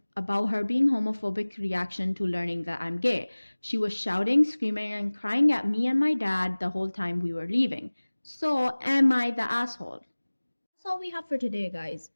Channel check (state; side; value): inverted; both; correlation -1.00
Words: about her being homophobic reaction to learning that I'm gay. She was shouting, screaming, and crying at me and my dad the whole time we were leaving. So, am I the asshole? That's all we have for today, guys.